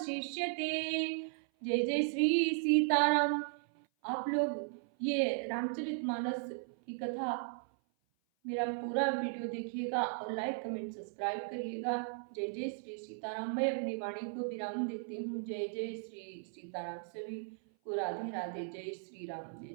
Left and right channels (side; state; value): left; silent; 53 dB below the other